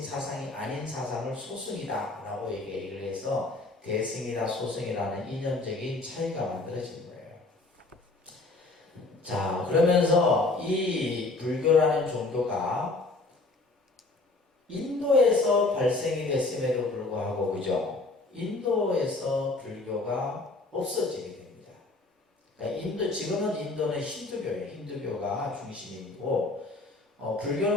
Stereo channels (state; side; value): quieter; right; 3.2 dB